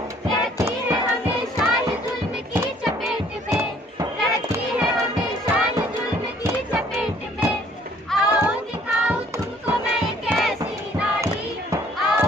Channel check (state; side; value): normal; both; correlation 0.59